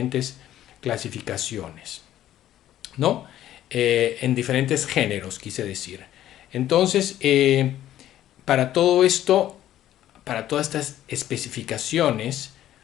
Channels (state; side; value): quieter; right; 12.6 dB